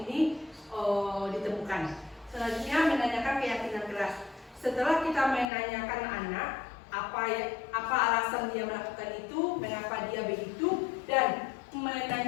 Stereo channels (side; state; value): right; drops out; at 5.5 s